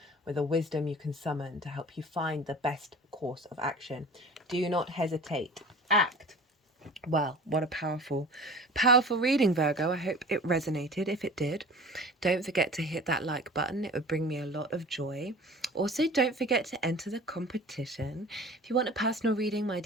with a wisdom you can summon to help you find the best course of action. Do not hesitate. Act. Well, what a powerful reading, Virgo. I hope it resonated. If it did, don't forget to hit that like button. It would bring me a lot of joy. Also, don't forget to enter the competition. If you want a personal reading, my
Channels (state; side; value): normal; both; correlation 0.41